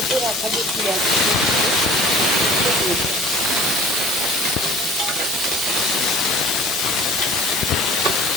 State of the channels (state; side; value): noise; right; hum, 25 dB below the sound